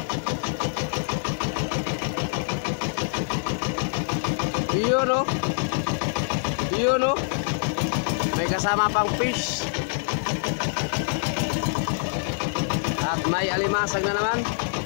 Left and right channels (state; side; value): silent; right; 62 dB below the other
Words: Yun no. Yun no. May kasama pang fish. At may alimasag na naman.